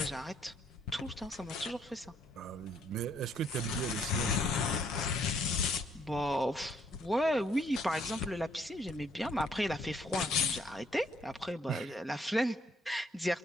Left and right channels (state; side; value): normal; both; correlation 0.67